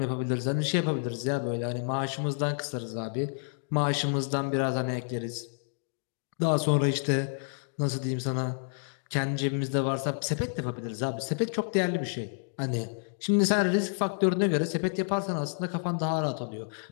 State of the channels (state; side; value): silent; right; digital silence